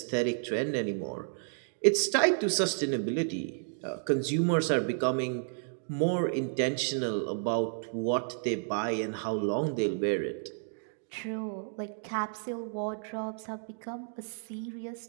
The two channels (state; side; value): silent; left; digital silence